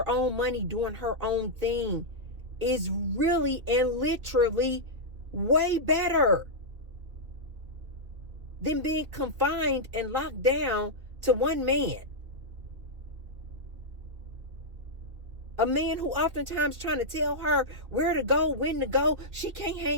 own money, doing her own thing, is really and literally way better than being confined and locked down to one man. A man who oftentimes trying to tell her where to go, when to go. She can't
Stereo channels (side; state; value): left; late; 2.7 ms